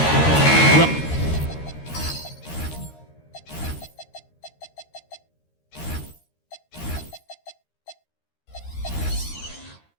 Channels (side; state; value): right; late; 13 ms